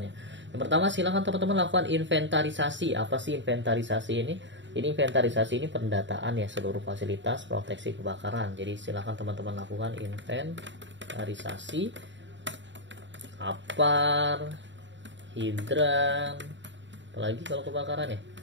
ya. Yang pertama, silakan teman-teman lakukan inventarisasi. Apa sih inventarisasi ini? Ini inventarisasi ini pendataan ya seluruh fasilitas proteksi kebakaran. Jadi silakan teman-teman lakukan inventarisasi APAR, hidran, apalagi kalau kebakaran ya,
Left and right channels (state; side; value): late; left; 0.54 ms